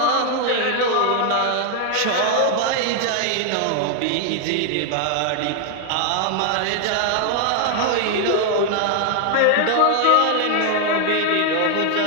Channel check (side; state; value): both; different; correlation 0.00